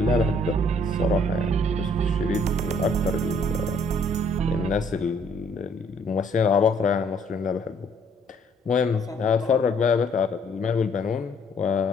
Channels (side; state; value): both; normal; correlation 0.63